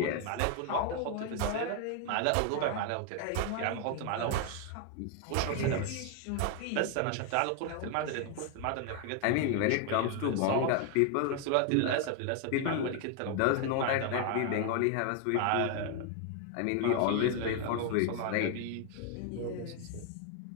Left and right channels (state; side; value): different; both; correlation 0.01